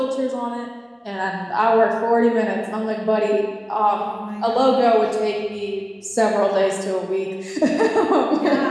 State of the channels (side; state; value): both; identical; correlation 1.00